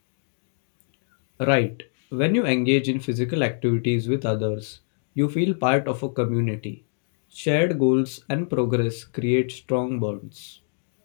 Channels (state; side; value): silent; right; digital silence